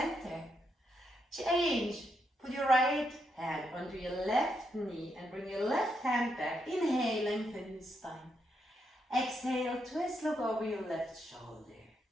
Change. Put your right hand onto your left knee and bring your left hand back. Inhale, lengthen your spine. Exhale, twist, look over your left shoulder.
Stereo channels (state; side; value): normal; both; correlation 0.80